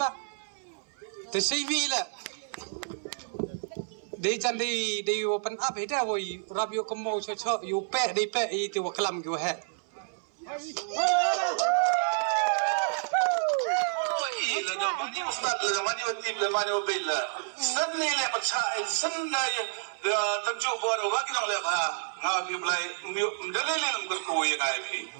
Te CV la. De jan de open up he da wo rab yo komo cho cho yu pe de pe I te wa klam go he. La do mani ustad la mani watim la mani wabilla. Sanni la patsa sanna tamju bor wa ki le ba nga bi blai ndale le ngor ko ye ngai phi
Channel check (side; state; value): left; silent; 58 dB below the other